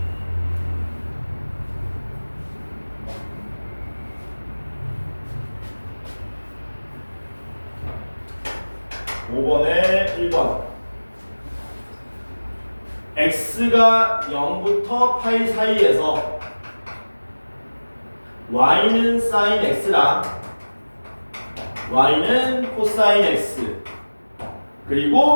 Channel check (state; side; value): inverted; both; correlation -1.00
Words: (5번에) 1번 x가 0부터 파이 사이에서 y는 sin x랑 y는 코사인 x